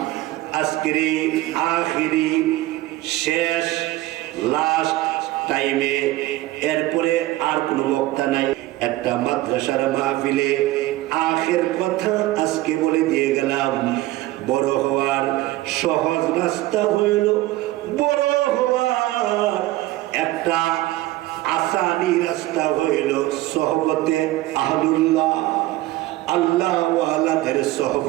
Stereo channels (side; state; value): left; quieter; 17.2 dB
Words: আজকের আখিরি শেষ লাস্ট টাইমে, এরপরে আর কোনো বক্তা নাই। একটা মাদ্রাসার মাহফিলে আখের কথা আজকে বলে দিয়ে গেলাম। বড় হওয়ার সহজ রাস্তা হইল, বড় হওয়ার একটা আসানি রাস্তা হইল সোহবতে আহলুল্লাহ, আল্লাহ ওয়ালাদের